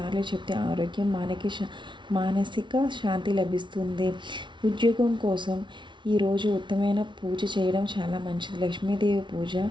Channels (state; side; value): late; left; 0.24 ms